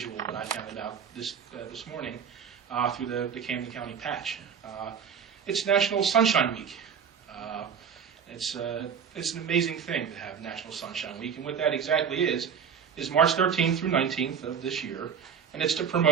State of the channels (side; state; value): left; quieter; 7.3 dB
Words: but I found out this morning through the Camden County Patch. It's National Sunshine Week. It's an amazing thing to have National Sunshine Week, and what that exactly is March 13th through 19th of this year, and it's to